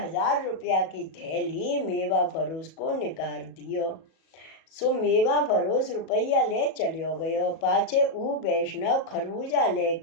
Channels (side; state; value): right; late; 37 ms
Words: रुपया की थैली मेवा फरोस को निकाल दियो। सो मेवा फरोस रुपया ले चलियो गयो। पाछे ऊ वैष्णव खरबूजा